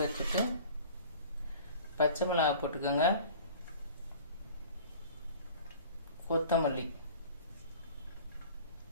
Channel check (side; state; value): both; inverted; correlation -0.44